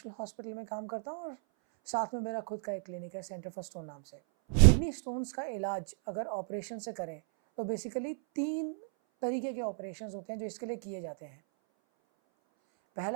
हॉस्पिटल में काम करता हूँ और साथ में मेरा खुद का एक क्लिनिक है, सेंटर फॉर स्टोन नाम से। किडनी स्टोन्स का इलाज अगर ऑपरेशन से करें तो बेसिकली 3 तरीके के ऑपरेशंस होते हैं जो इसके लिए किए जाते हैं।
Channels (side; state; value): left; silent; 55 dB below the other